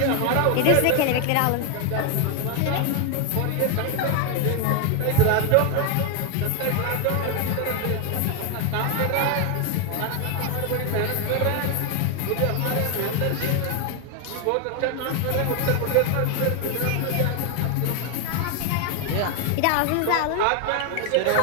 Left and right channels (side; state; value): both; different; correlation 0.01